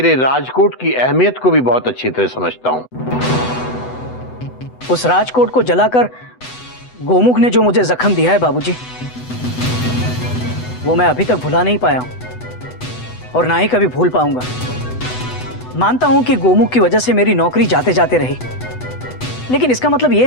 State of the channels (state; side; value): late; right; 8.0 ms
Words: राजकोट की अहमियत को भी बहुत अच्छी तरह समझता हूँ। उस राजकोट को जलाकर गोमुख ने जो मुझे जख्म दिया है बाबूजी, वो मैं अभी तक भुला नहीं पाया हूं और ना ही कभी भूल पाऊंगा। मानता हूं कि गोमुख की वजह से मेरी नौकरी जाते जाते रही, लेकिन इसका मतलब ये